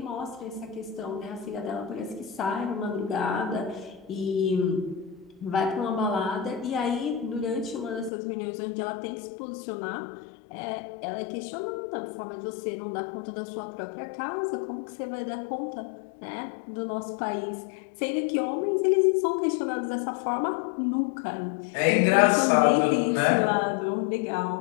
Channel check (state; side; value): drops out; right; at 8.1 s